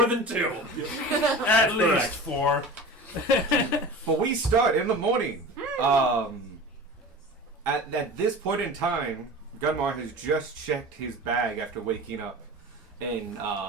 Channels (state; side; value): normal; both; correlation 0.35